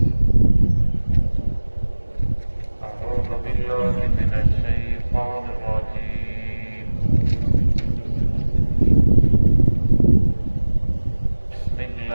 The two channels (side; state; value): both; inverted; correlation -1.00